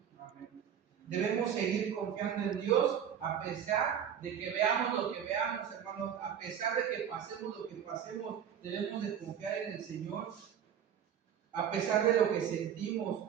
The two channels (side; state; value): left; quieter; 8.7 dB